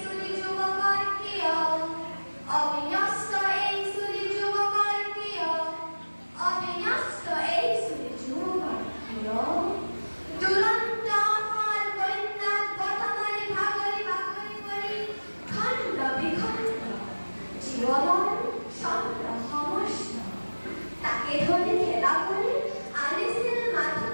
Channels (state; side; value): inverted; both; correlation -1.00